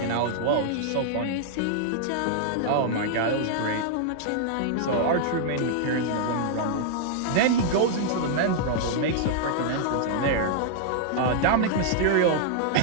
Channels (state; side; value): different; both; correlation -0.01